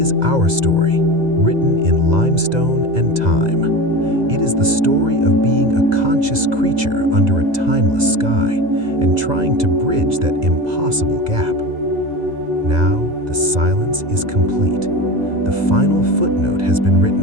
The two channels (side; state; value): left; late; 2.0 ms